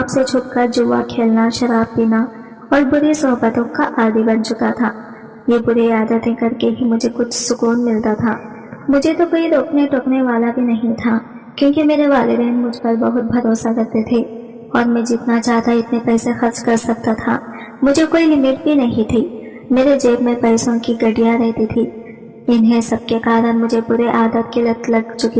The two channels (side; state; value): both; identical; correlation 1.00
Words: سے چھپ کر جوا کھیلنا، شراب پینا اور بری صحبتوں کا عادی بن چکا تھا۔ یہ بری عادتیں کر کے ہی مجھے کچھ سکون ملتا تھا۔ مجھے تو کوئی روکنے ٹوکنے والا بھی نہیں تھا، کیونکہ میرے والدین مجھ پر بہت بھروسہ کرتے تھے اور میں جتنا چاہتا اتنے پیسے خرچ کر سکتا تھا۔ مجھے کوئی لمٹ بھی نہیں تھی۔ میرے جیب میں پیسوں کی گڈیاں رہتی تھی۔ انہیں سب کے کارن مجھے برے عادت کی لت لگ